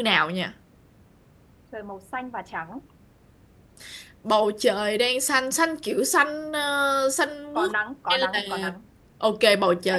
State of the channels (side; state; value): both; identical; correlation 1.00